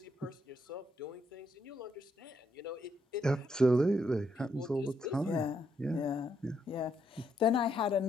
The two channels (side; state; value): both; normal; correlation 0.76